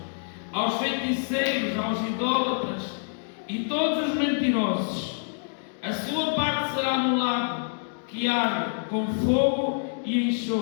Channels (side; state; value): right; silent; digital silence